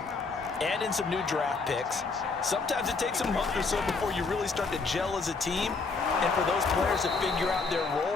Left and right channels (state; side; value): quieter; right; 4.3 dB